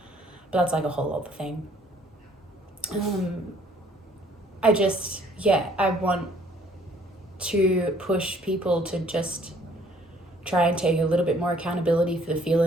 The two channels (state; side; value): normal; both; correlation 0.60